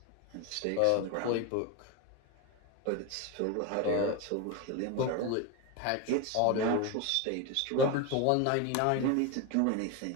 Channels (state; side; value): different; both; correlation 0.03